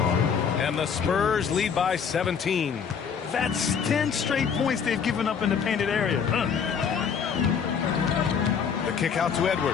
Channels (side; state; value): right; quieter; 6.8 dB